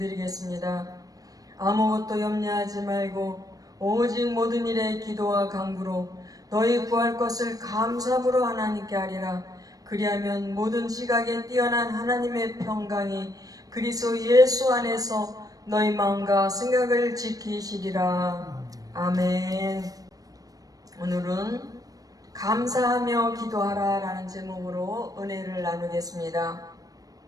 아무것도 염려하지 말고 오직 모든 일에 기도와 간구로 너희 구할 것을 감사함으로 하나님께 하리라. 그리하면 모든 지각에 뛰어난 하나님의 평강이 그리스도 예수 안에서 너희 마음과 생각을 지키시리라. 아멘. 오늘은 감사하며 기도하라 라는 제목으로 은혜를 나누겠습니다.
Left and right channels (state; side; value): late; left; 0.18 ms